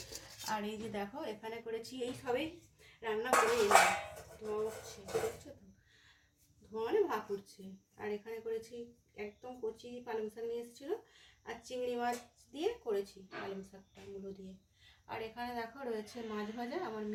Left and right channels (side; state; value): both; identical; correlation 1.00